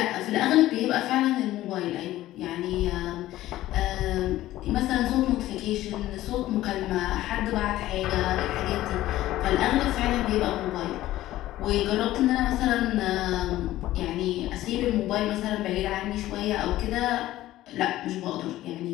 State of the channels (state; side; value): quieter; right; 15.2 dB